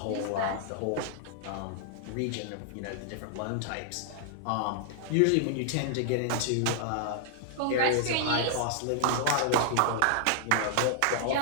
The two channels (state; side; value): different; both; correlation -0.01